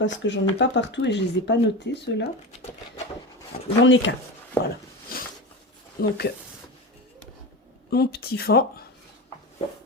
que j'en ai pas partout et je les ai pas notés ceux-là. J'en ai qu'un, voilà. Donc, mon petit fond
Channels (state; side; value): normal; both; correlation 0.24